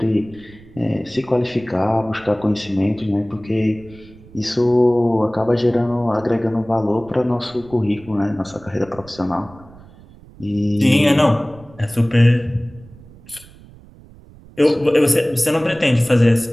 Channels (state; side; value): noise; right; rumble, 22 dB below the sound